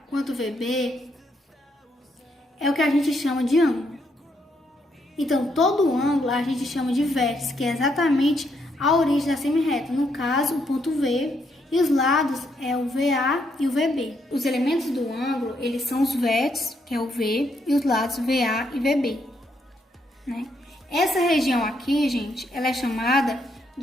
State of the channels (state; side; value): normal; both; correlation 0.75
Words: quanto VB, é o que a gente chama de ângulo. Então, todo ângulo a gente chama de vértice, que é exatamente a origem da semirreta. No caso, o ponto V, e os lados é o VA e o VB. Os elementos do ângulo, eles são os vértices, que é o V, e os lados VA e VB, né? Essa região aqui, gente, ela é chamada